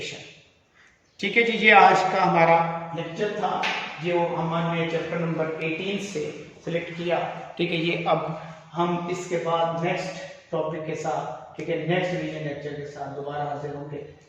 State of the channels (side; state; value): both; identical; correlation 1.00